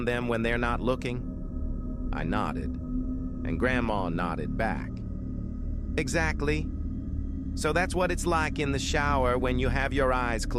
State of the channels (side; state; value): both; identical; correlation 1.00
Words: them when they're not looking? I nodded, and Grandma nodded back. Exactly. So that's what it's like in the shower when you have your eyes